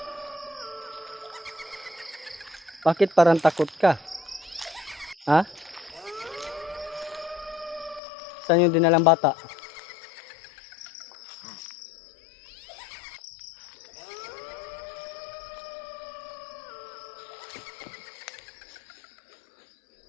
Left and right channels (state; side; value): drops out; right; at 8.0 s